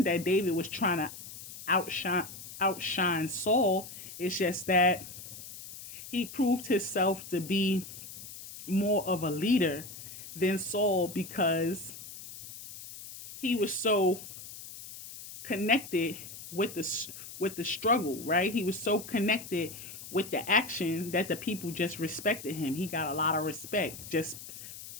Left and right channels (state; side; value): noise; left; hiss, 13 dB below the sound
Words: that David was trying to outshine Saul. It's just that he proved himself to be more of a leader than Saul because he was so connected with the struggle, right? He was so connected with the action that the people just respected him. He got a lot of respect just